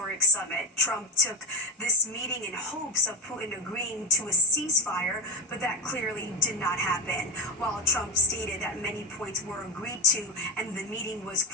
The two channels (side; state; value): both; normal; correlation 0.14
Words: summit. Trump took this meeting in hopes of Putin agreeing to a ceasefire, but that clearly did not happen. While Trump stated that many points were agreed to and the meeting was,